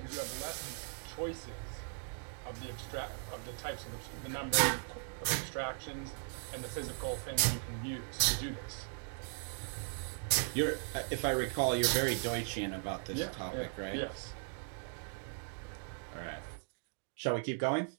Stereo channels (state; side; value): silent; left; 52 dB below the other